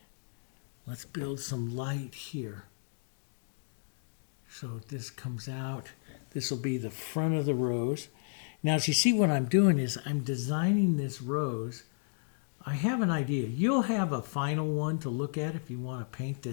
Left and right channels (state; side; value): silent; right; digital silence